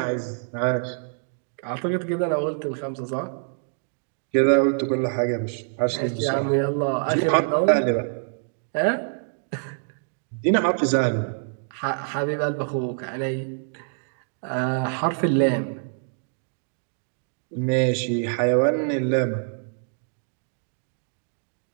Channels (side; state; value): left; silent; digital silence